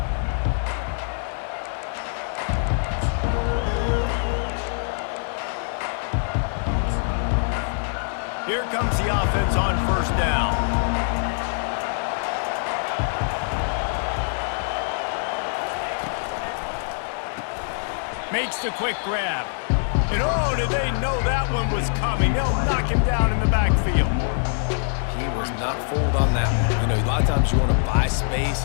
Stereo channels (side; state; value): right; silent; digital silence